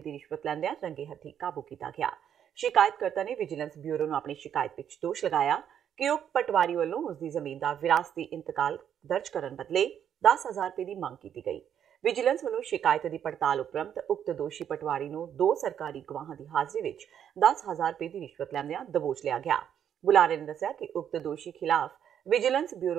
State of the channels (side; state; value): left; quieter; 9.2 dB